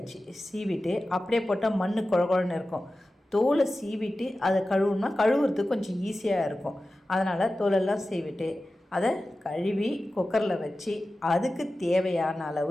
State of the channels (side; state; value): both; normal; correlation 0.95